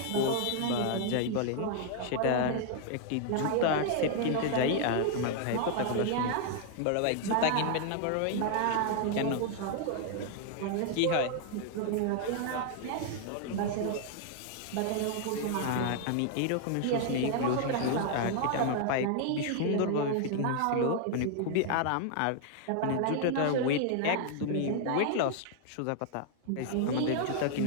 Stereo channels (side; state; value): both; different; correlation 0.00